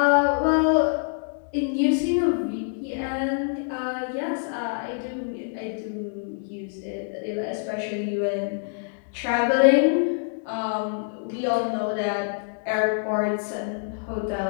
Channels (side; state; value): right; silent; digital silence